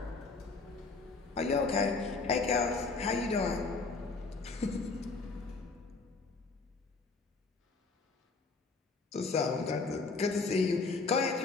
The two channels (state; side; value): quieter; right; 4.1 dB